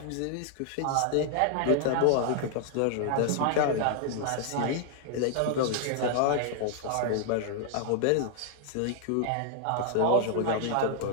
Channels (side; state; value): both; different; correlation 0.00